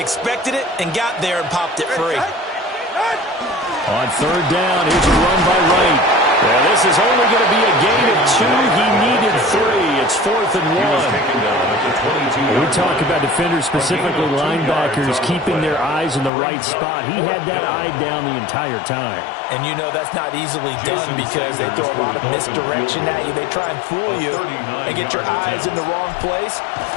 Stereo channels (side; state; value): right; drops out; at 16.3 s